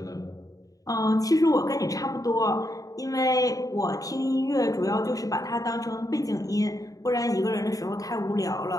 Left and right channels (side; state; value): right; late; 0.17 ms